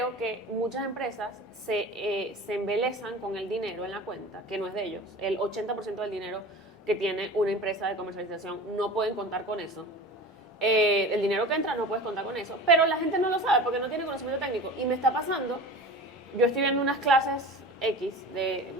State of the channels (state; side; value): normal; both; correlation 0.35